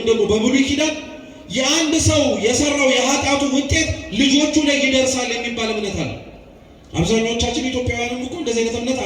ደግሞ በብሉይ ኪዳን የአንድ ሰው የሰራው የኃጢአቱ ውጤት ልጆቹ ላይ ይደርሳል የሚባል እምነት አለ። አብዛኞቻችን ኢትዮጵያውያንም እኮ እንደዚህ አይነት እምነት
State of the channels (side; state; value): both; identical; correlation 1.00